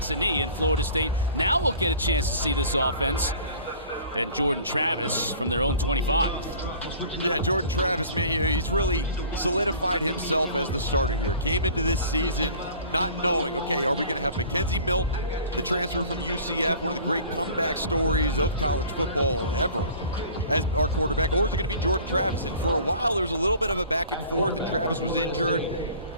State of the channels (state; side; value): inverted; both; correlation -0.46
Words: a knee, and Florida State now will get a chance to see this offense. And Jordan Travis from their own 25. Yeah, Jordan Travis, man, he's really solidified himself as the starter here. Came into this season not knowing, okay, are we going to have Mackenzie Milton, the transfer from UCF, one of the great comeback stories of college football ever, as our quarterback, or is it going to be Jordan Travis? And for a while, there was a little bit of a back and forth, and Travis was injured.